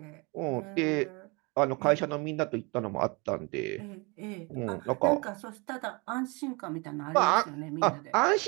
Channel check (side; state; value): left; quieter; 28.8 dB